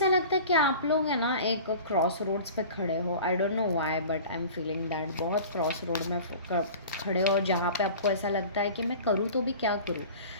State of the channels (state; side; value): inverted; both; correlation -0.40